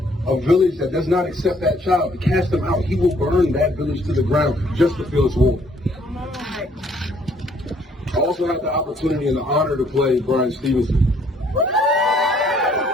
a village that does not accept that child. To cast them out, he will burn that village to the ground just to feel its warmth. I also had the opportunity and the honor to play Brian Stevenson.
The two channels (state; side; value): normal; both; correlation 0.64